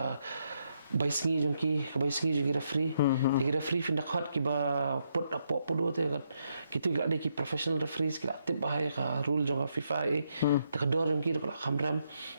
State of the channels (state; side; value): inverted; both; correlation -0.77